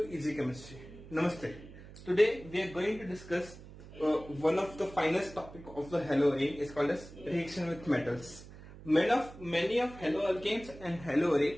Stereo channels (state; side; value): noise; right; hum, 17 dB below the sound